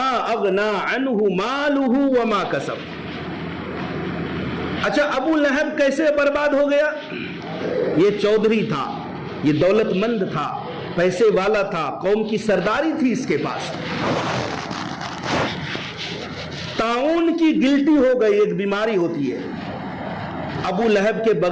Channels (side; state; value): both; identical; correlation 1.00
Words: اغنا عنہ مالہ وما کسب۔ اچھا، ابو لہب کیسے برباد ہو گیا؟ یہ چودھری تھا، یہ دولت مند تھا، پیسے والا تھا، قوم کی سرداری تھی اس کے پاس۔ طاعون کی گلٹی ہو گئی، ایک بیماری ہوتی ہے، ابو لہب کے